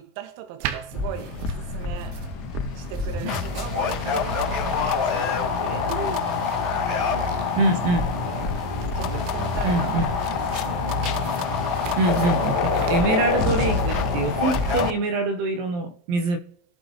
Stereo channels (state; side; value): late; left; 23 ms